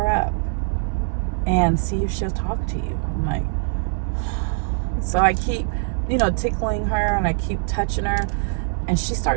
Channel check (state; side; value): silent; left; digital silence